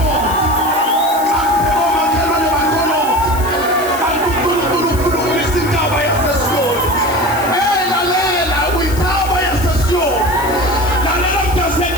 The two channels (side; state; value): left; noise; hiss, 13 dB below the sound